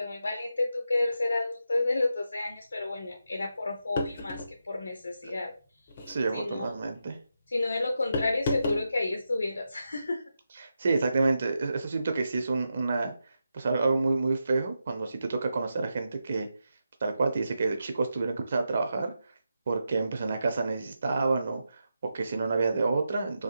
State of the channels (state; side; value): inverted; both; correlation -0.87